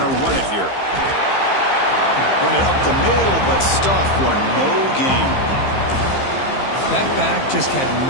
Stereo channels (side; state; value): right; late; 15 ms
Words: to run it here. Run it up the middle, but stuff for no gain. That back just had